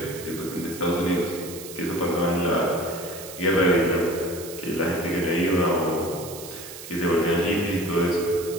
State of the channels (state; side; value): noise; right; hiss, 13 dB below the sound